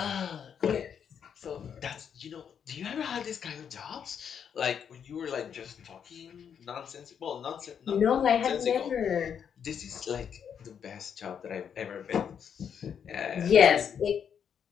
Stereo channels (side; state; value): right; quieter; 7.8 dB